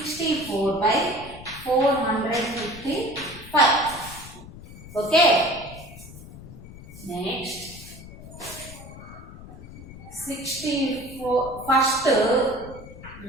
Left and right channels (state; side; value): noise; left; rumble, 16 dB below the sound